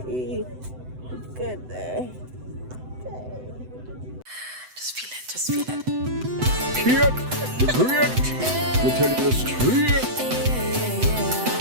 good there. Just feel it, just feel it. Kid, great. Me tell you the straight.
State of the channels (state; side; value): late; left; 7.9 ms